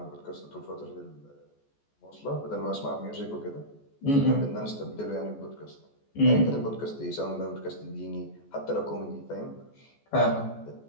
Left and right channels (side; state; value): right; late; 14 ms